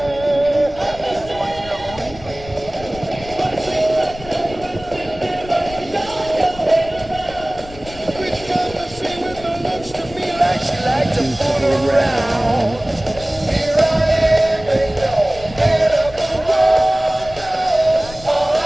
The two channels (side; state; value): left; noise; rumble, 17 dB below the sound